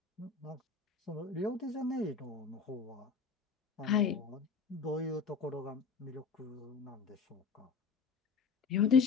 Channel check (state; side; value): quieter; right; 5.2 dB